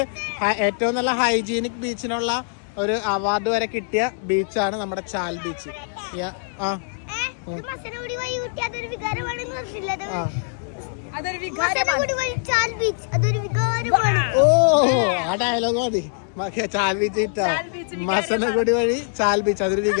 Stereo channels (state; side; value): silent; right; digital silence